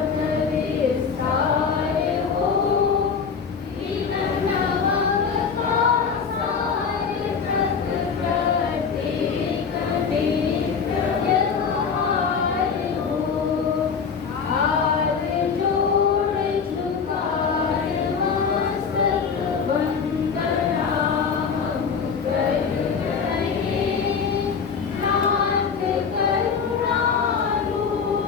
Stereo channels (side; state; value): right; quieter; 6.0 dB